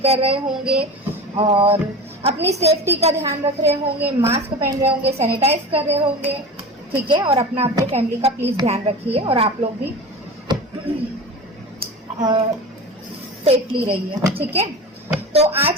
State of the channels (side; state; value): both; normal; correlation 0.31